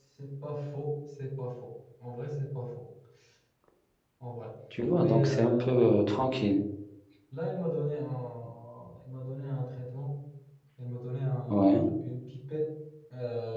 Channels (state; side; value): identical; both; correlation 1.00